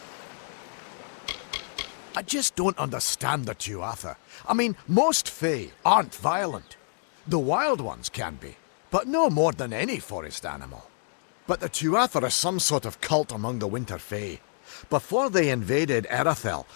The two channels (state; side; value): silent; right; digital silence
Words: I just don't understand the Tuatha. I mean, most Fae aren't violent. The wild ones can be, but no more than any forest animal. But the Tuatha are some sort of cult among the Winter Fae. Before they invaded Erythel,